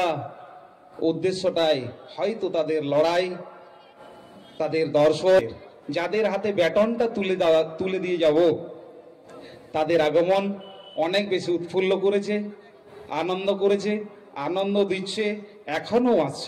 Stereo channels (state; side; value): identical; both; correlation 1.00